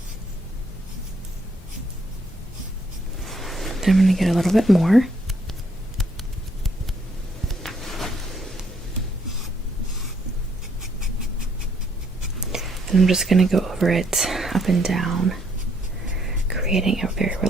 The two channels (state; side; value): normal; both; correlation 0.70